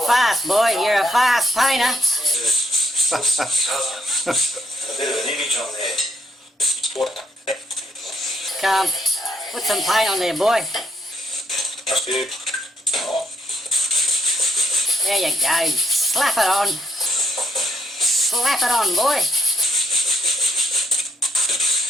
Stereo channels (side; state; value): both; normal; correlation 0.73